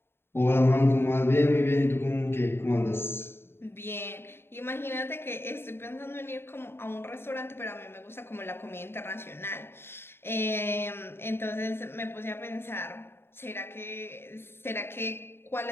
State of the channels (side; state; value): right; late; 0.11 ms